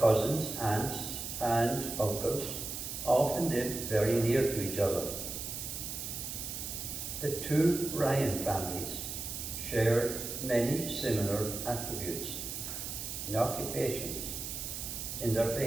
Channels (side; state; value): right; noise; hiss, 6 dB below the sound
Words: aunts, and uncles often lived very near to each other. The two Ryan families shared many similar attributes in occupations, in their